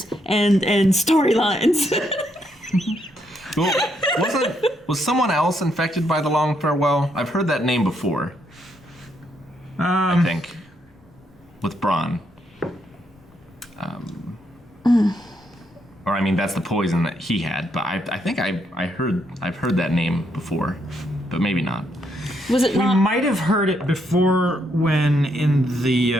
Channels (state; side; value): normal; both; correlation 0.76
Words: and storylines. Well, was someone else infected by the Long Farewell? I've heard that name before. I think with Bronn. Or I mean, that's the poison that he had. But I think I've heard that name before, but maybe not. Was it not? We might have heard it before when in